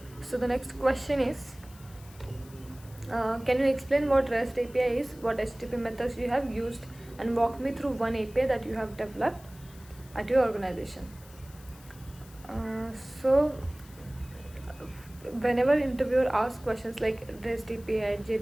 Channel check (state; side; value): noise; left; hiss, 23 dB below the sound